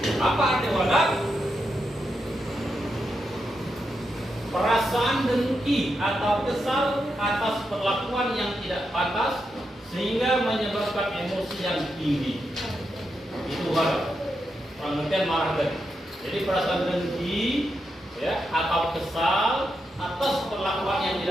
Apa arti wadah? Perasaan dengki atau kesal atas perlakuan yang tidak pantas sehingga menyebabkan emosi yang tinggi. Itu wadah. Pengertian marah tadi. Jadi perasaan dengki, ya, atau kesal atas perlakuan yang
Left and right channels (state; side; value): normal; both; correlation 0.85